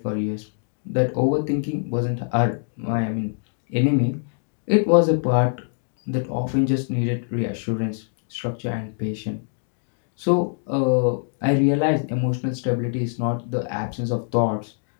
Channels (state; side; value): silent; right; digital silence